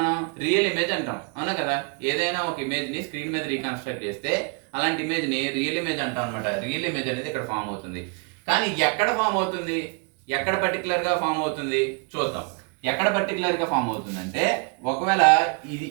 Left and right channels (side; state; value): left; quieter; 33.2 dB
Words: రియల్ ఇమేజ్ అంటాం. అవునా కదా? ఏదైనా ఒక ఇమేజ్ ని స్క్రీన్ మీద రీకన్స్ట్రక్ట్ చేస్తే అలాంటి ఇమేజ్ ని రియల్ ఇమేజ్ అంటాం అనమాట. రియల్ ఇమేజ్ అనేది ఇక్కడ ఫామ్ అవుతుంది. కానీ ఎక్కడ ఫామ్ అవుతుంది? ఎక్కడ పర్టికులర్ గా ఫామ్ అవుతుంది చూద్దాం. ఎక్కడ పర్టికులర్ గా ఫామ్ అవుతుందంటే, ఒకవేళ